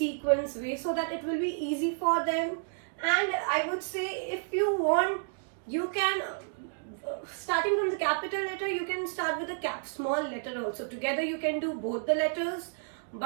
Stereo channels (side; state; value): left; silent; digital silence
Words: way, so that it will be easy for them. And I would say, if you want, you can starting from the capital letter, you can start with the small letter also. Together you can do both the letters,